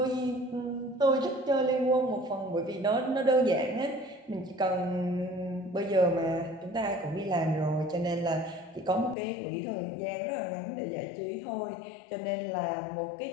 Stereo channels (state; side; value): drops out; right; at 9.2 s